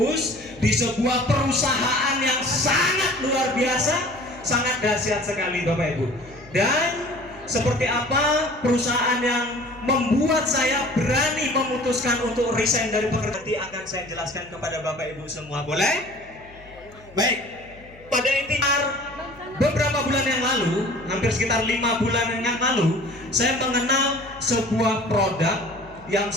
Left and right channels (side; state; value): left; noise; hum, 23 dB below the sound